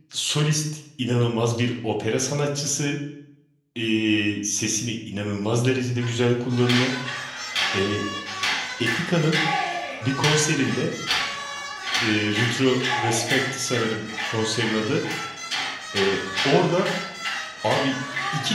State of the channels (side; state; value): both; identical; correlation 1.00